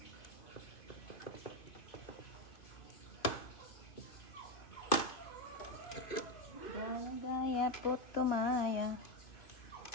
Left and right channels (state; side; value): late; right; 2.5 ms